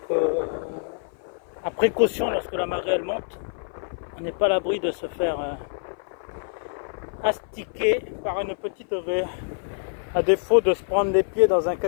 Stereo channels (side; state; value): right; silent; 56 dB below the other